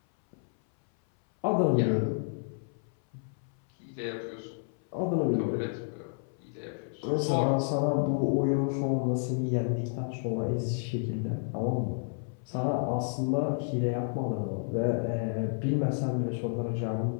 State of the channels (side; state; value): right; silent; 57 dB below the other